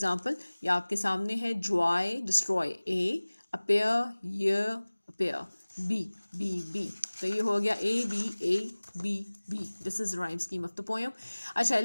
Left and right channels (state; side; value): inverted; both; correlation -1.00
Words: ये आपके सामने है Joy destroy, A appear year appear, B B B। तो ये हो गया A B A B B। This is rhyme scheme of the poem. अच्छा,